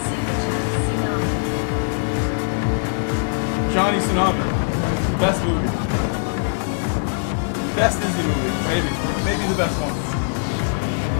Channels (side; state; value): right; silent; digital silence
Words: Johnny Tsunami. Best movie. Best Disney movie. Maybe. Maybe the best one.